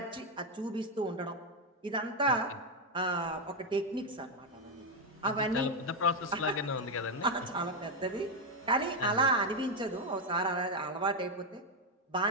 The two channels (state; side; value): normal; both; correlation 0.06